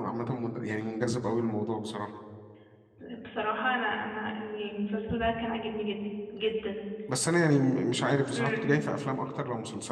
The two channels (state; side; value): identical; both; correlation 1.00